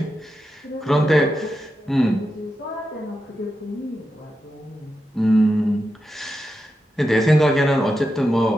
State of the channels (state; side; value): normal; both; correlation 0.88